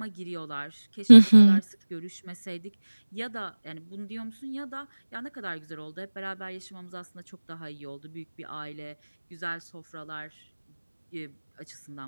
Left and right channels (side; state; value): both; inverted; correlation -1.00